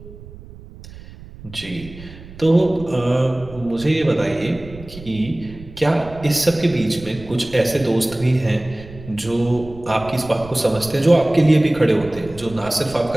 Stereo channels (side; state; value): right; noise; rumble, 17 dB below the sound